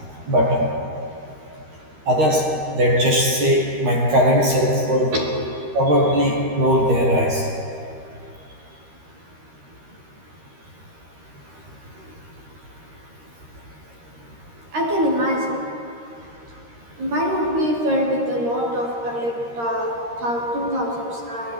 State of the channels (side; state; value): left; late; 13 ms